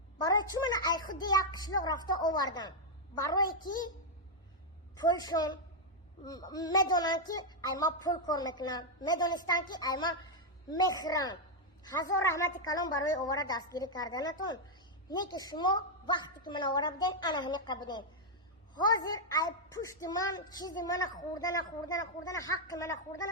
Baroy chi mana ay khudi yak qishloq rafta ovardan. Baroy ki pulshon medonan ki ay ma pul kor meknan. Medonistan ki ay ma mehran. Hazor rahmati kalom baroy ovara dastgiri kardanatun. Ne ki shuma vaqti ki mana ovara biden ana hami qabden. Hozir ay pushti man chizi mana khurdana haqqi mana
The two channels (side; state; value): both; normal; correlation -0.01